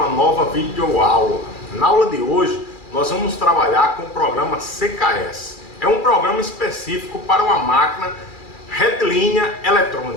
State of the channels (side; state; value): right; late; 2.4 ms